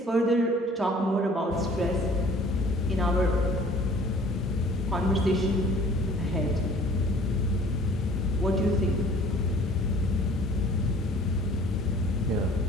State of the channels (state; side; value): normal; both; correlation 0.52